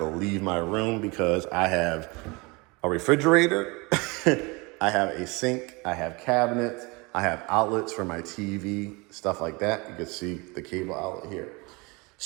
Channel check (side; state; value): left; quieter; 26.9 dB